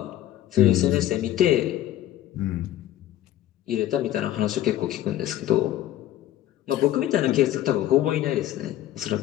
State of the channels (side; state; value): right; quieter; 13.2 dB